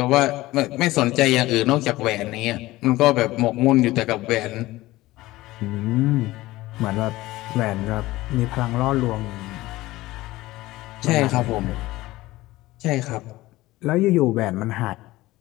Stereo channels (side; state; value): right; quieter; 18.1 dB